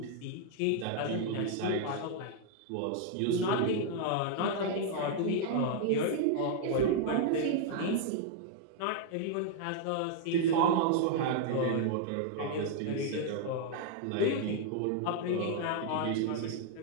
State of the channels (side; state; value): both; different; correlation 0.00